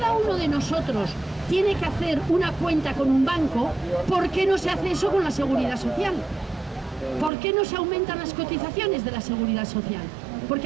uno de nosotros tiene que hacer una cuenta con un banco, ¿por qué no se hace eso con la Seguridad Social? ¿Por qué no se aumentan las cotizaciones de la Seguridad Social?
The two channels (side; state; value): left; drops out; at 7.3 s